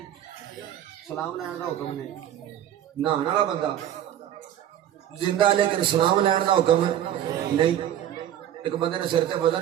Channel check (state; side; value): quieter; left; 11.1 dB